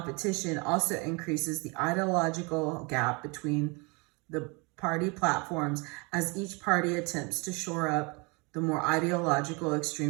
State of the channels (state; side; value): quieter; left; 29.6 dB